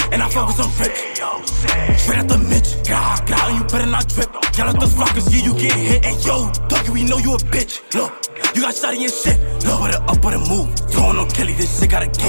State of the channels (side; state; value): both; inverted; correlation -1.00